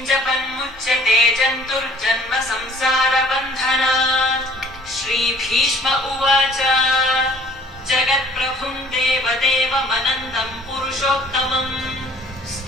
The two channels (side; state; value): both; normal; correlation 0.54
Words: जपन्मुच्यते जन्तुर्जन्म संसारबन्धनात् श्रीभीष्म उवाच जगत्प्रभुं देवदेवमनन्तं पुरुषोत्तमम्